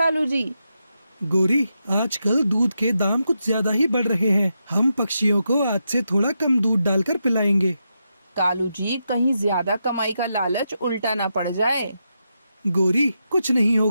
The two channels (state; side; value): inverted; both; correlation -0.85